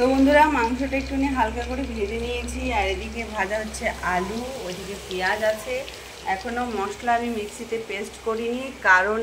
বন্ধুরা মাংসটা একটুখানি হালকা করে ভেজে নিয়েছি, আর এদিকে ভাজা হচ্ছে আলু, ওইদিকে পেঁয়াজ আছে। এখনও মশলা আমি মিক্সিতে পেস্ট করিনি, কারণ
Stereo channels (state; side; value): identical; both; correlation 1.00